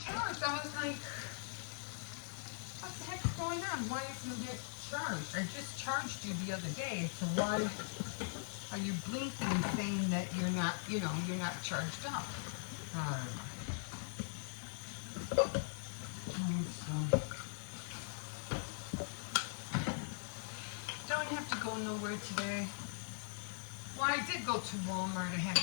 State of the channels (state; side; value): silent; right; digital silence